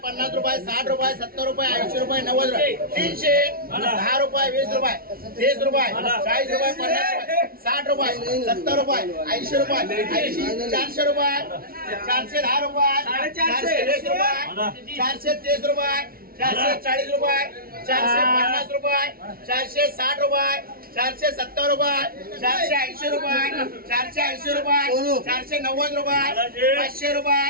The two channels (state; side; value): late; left; 0.43 ms